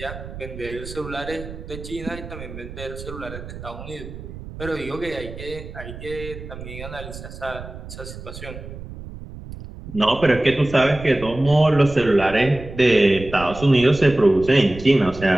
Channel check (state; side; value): noise; right; rumble, 12 dB below the sound